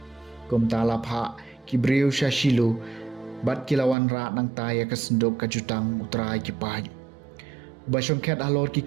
kum talap ha kibriu sya Shilu bat kilawan ra nang taya kasendok kajutang utrai ki pai basong ket alor ki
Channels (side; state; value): left; drops out; at 4.0 s